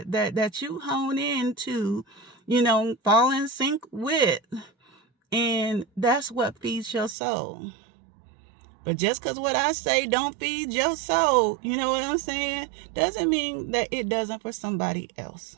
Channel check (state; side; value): drops out; left; at 7.2 s